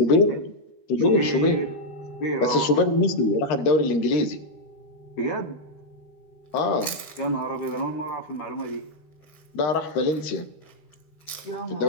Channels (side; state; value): right; late; 13 ms